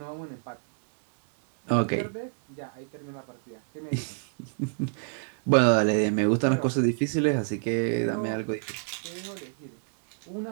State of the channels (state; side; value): silent; left; digital silence